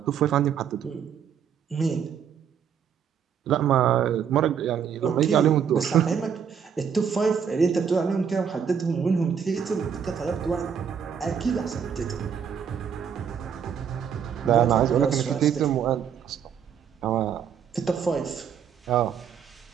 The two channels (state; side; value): quieter; left; 7.6 dB